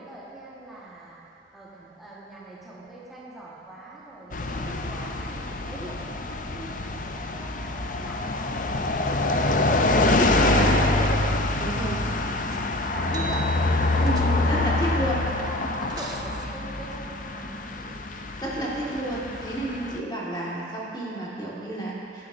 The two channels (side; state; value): both; normal; correlation 0.38